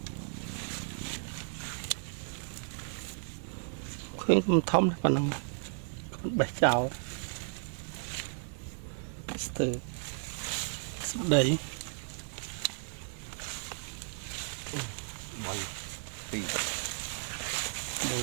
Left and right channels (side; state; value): left; silent; digital silence